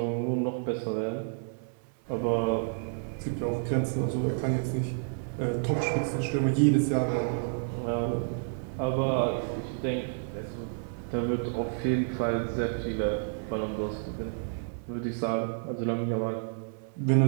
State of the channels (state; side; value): silent; left; 58 dB below the other